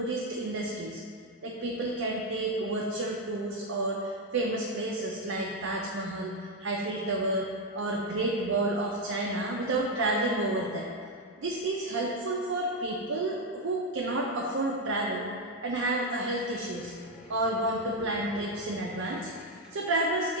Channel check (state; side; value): normal; both; correlation 0.06